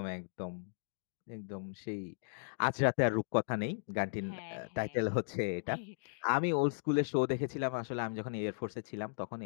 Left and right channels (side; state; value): right; silent; digital silence